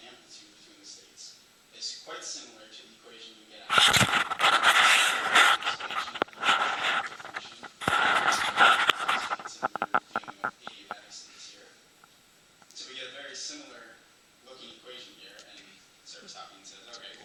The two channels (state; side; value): identical; both; correlation 1.00